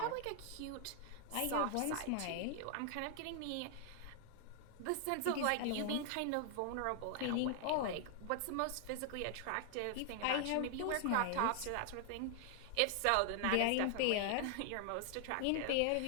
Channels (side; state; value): both; different; correlation 0.00